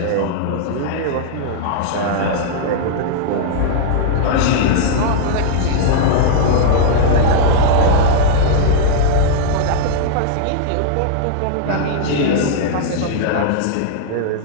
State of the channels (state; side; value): different; both; correlation -0.01